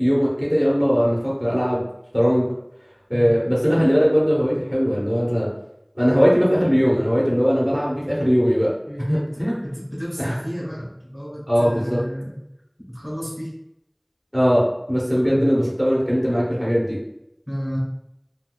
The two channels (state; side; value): identical; both; correlation 1.00